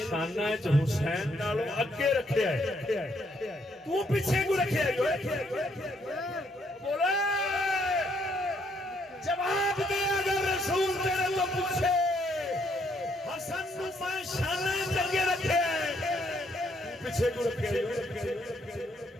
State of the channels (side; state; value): both; normal; correlation 0.71